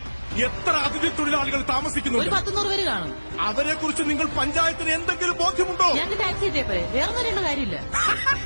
എത്ര അതിഥി തൊഴിലാളികൾ താമസിക്കുന്നുണ്ട്? 100 പേര് കാണും. അവരെ കുറിച്ച് നിങ്ങൾ പഞ്ചായത്തിന് എന്തെങ്കിലും ബോധ്യമുണ്ടോ? ഞങ്ങൾക്ക് ടാക്സി കിട്ടിയപ്പോഴേ വേറെ ഒന്നും കാര്യമില്ല.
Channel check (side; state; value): both; inverted; correlation -1.00